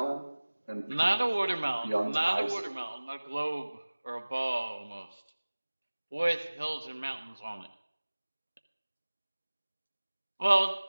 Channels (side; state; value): both; inverted; correlation -1.00